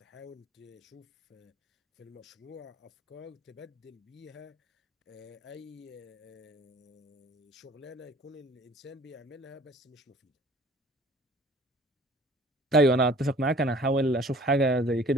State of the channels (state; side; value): normal; both; correlation 0.51